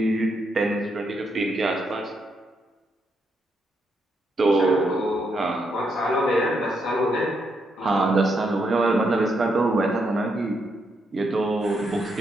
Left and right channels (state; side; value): normal; both; correlation 0.79